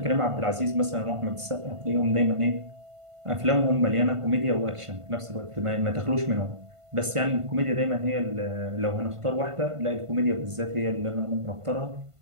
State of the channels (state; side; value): late; left; 1.5 ms